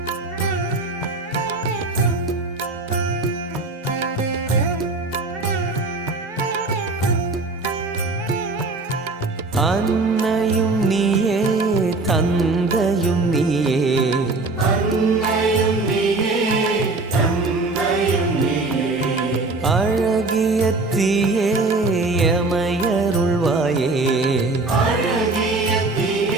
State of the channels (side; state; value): left; quieter; 3.4 dB